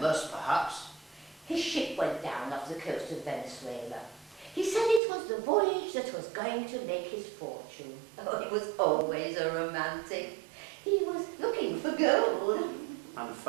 perhaps. His ship went down off the coast of Venezuela. He said it was the voyage that was going to make his fortune. Oh, he was always a romantic. He was looking for gold. And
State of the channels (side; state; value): left; drops out; at 5.0 s